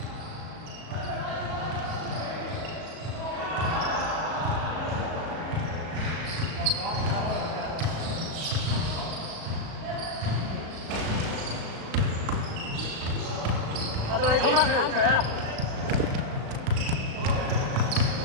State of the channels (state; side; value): late; left; 37 ms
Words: 我到你衝翻去攬佢啊！